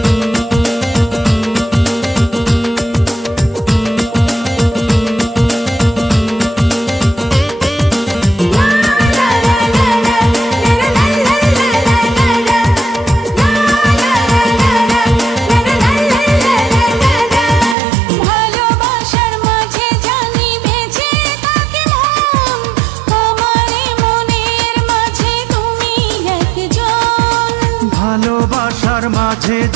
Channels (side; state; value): left; drops out; at 17.8 s